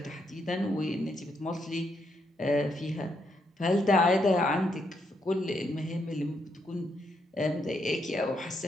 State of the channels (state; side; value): normal; both; correlation 0.78